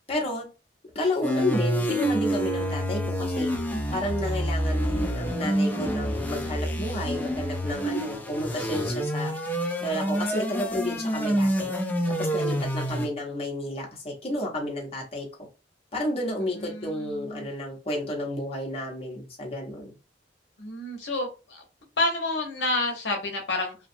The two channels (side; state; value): both; normal; correlation 0.59